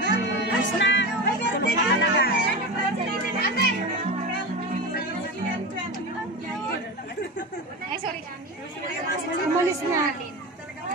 Ay, sorry. Umalis na.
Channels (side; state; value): both; normal; correlation 0.24